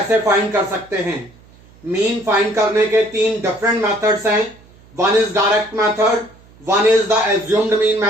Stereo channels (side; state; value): right; noise; hum, 27 dB below the sound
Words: फाइंड कर सकते हैं। मीन फाइंड करने के 3 डिफरेंट मेथड्स हैं। One is direct method, one is the assumed mean